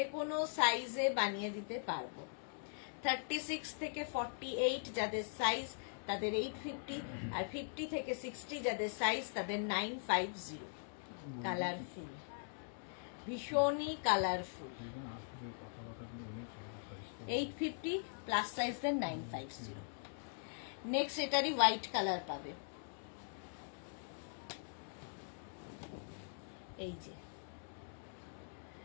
কোনো সাইজে বানিয়ে দিতে পারবো। 36 থেকে 48 যাদের সাইজ তাদের 850, আর 50 থেকে 60 যাদের সাইজ তাদের 950। কালারফুল, ভীষণই কালারফুল। 850 প্লাস সাইজের 950। নেক্সট এটারই হোয়াইট কালার পাবে, এই যে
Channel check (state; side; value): silent; right; digital silence